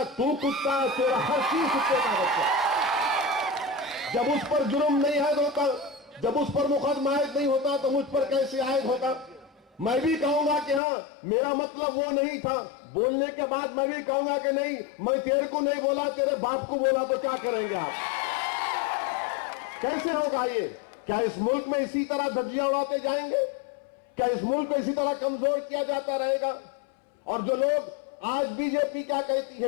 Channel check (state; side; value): drops out; right; at 10.8 s